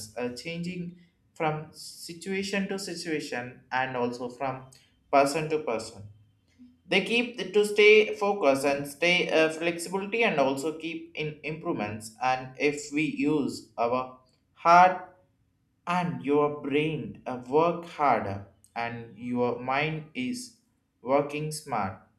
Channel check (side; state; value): both; identical; correlation 1.00